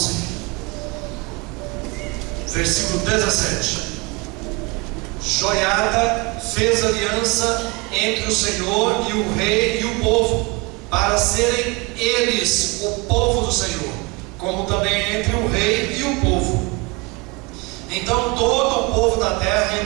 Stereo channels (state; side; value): quieter; left; 26.1 dB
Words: versículo 17. Joiada fez aliança entre o Senhor e o rei e o povo, para serem eles o povo do Senhor, como também entre o rei e o povo. Então todo o povo da terra